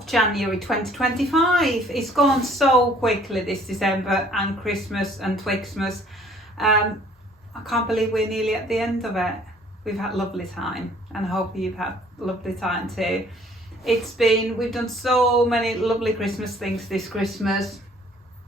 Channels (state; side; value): normal; both; correlation 0.58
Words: January 2025. It's gone so quickly this December and Christmas and Twixmas. I can't believe we're nearly at the end of it. We've had a lovely time and I hope you've had a lovely time too. We've done so many lovely Christmas things this Christmas.